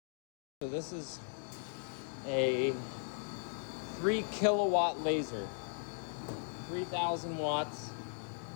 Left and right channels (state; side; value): silent; right; digital silence